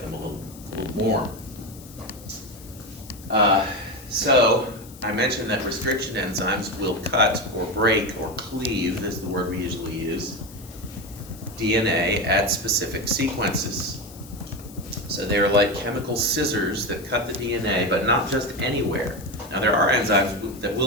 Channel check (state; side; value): noise; left; hiss, 20 dB below the sound